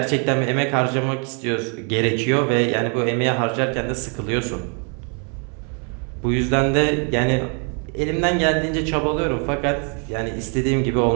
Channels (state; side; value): quieter; left; 38.6 dB